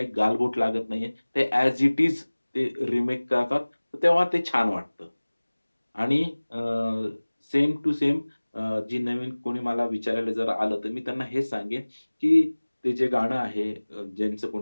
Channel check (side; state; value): both; inverted; correlation -1.00